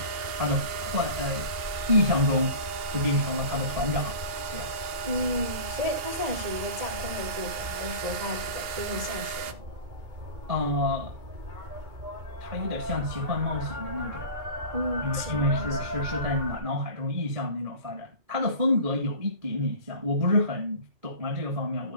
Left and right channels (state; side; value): late; left; 2.8 ms